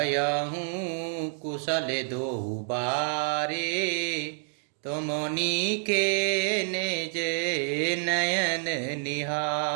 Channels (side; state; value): left; silent; 59 dB below the other